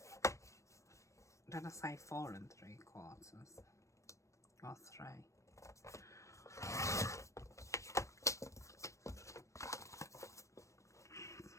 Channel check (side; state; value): right; late; 0.15 ms